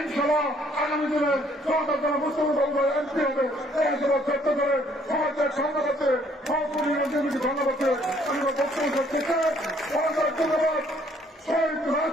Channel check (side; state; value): both; normal; correlation 0.63